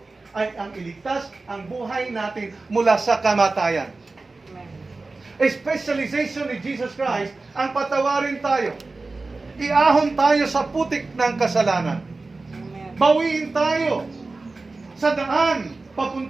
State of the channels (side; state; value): left; quieter; 3.5 dB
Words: ay ang iligtas ang buhay natin mula sa kamatayan. Specialization ni Jesus Christ ang patawarin tayo. Iahon tayo sa putik ng kasalanan. Bawiin tayo sa daan